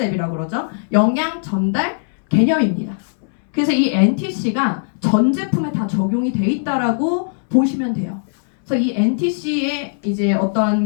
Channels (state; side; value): silent; right; 67 dB below the other